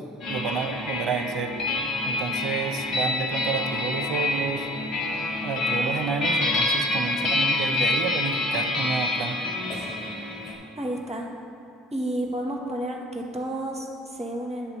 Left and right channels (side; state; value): both; normal; correlation 0.49